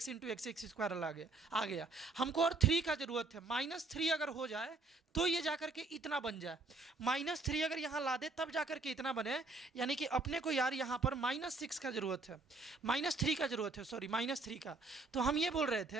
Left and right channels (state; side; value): quieter; left; 3.6 dB